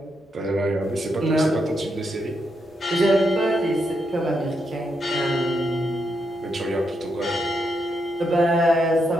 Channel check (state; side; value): normal; both; correlation 0.81